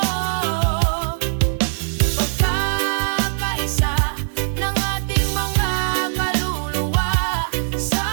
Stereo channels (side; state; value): left; silent; digital silence